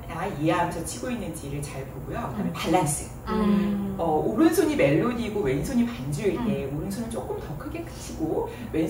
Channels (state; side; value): identical; both; correlation 1.00